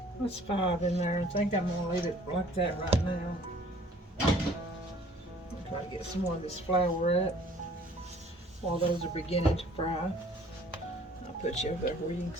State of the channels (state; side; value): normal; both; correlation 0.54